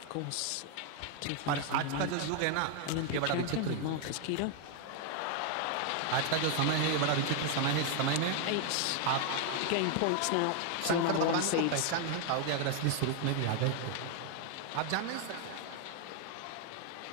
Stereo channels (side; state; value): both; different; correlation 0.00